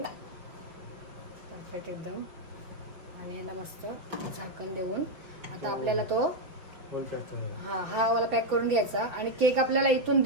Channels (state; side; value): late; left; 5.5 ms